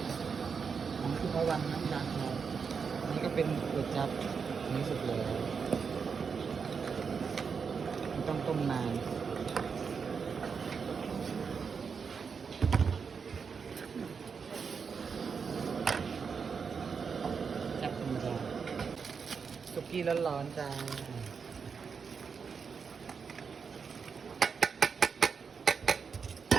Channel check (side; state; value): left; quieter; 5.9 dB